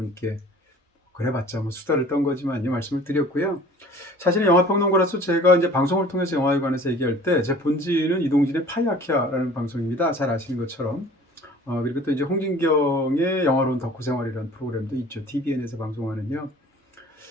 그래봤자 뭐 수다를 떤 거지만요 말씀을 드렸고요. 사실은 영화평론가로서 제가 이제 방송을 통해서 영화에 관해서 얘기할 때 제 본질은 이동진의 파이아키아라는 방송입니다. 잘 아시는 것처럼. 그리고 또 이제 홍진경의 영화로운 덕후생활이라는 프로그램도 있죠. TVN에서 방송하는요.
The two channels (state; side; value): normal; both; correlation 0.47